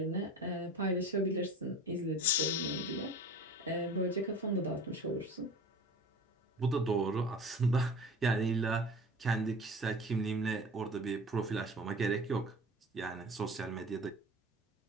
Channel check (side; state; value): both; normal; correlation 0.39